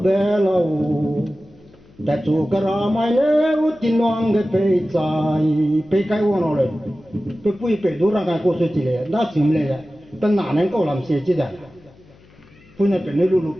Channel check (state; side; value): noise; left; hum, 27 dB below the sound